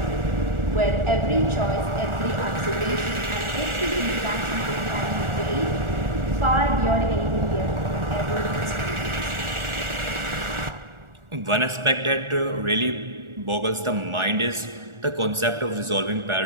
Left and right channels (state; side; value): late; left; 1.4 ms